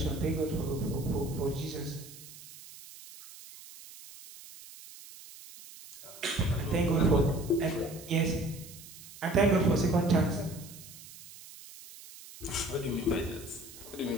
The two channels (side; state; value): right; noise; hiss, 17 dB below the sound